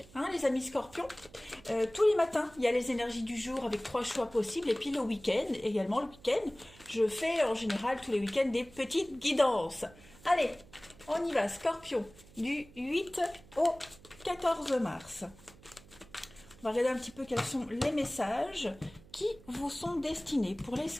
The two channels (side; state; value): right; noise; hum, 23 dB below the sound